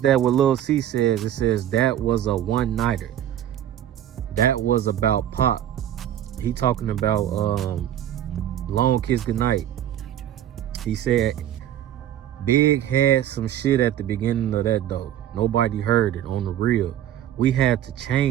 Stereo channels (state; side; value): quieter; left; 11.4 dB